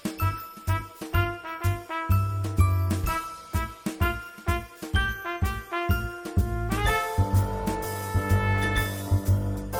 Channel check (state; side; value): identical; both; correlation 1.00